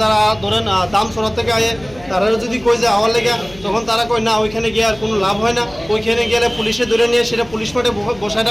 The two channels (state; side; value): noise; left; hum, 21 dB below the sound